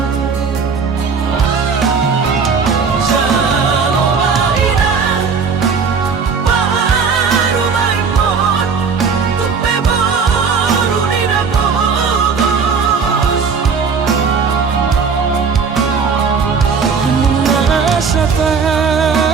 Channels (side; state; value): left; quieter; 5.6 dB